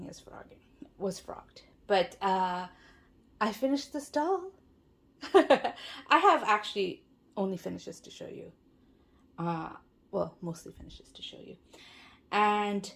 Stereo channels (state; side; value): identical; both; correlation 1.00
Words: was frogged. But I finished this doll. I have actually only finishes to show you. Well, mostly finishes to show you. And